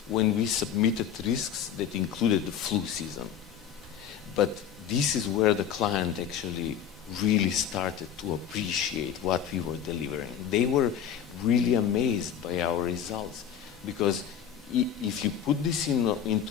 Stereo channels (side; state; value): right; quieter; 8.7 dB